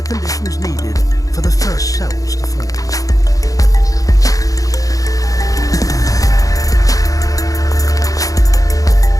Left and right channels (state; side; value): late; right; 0.17 ms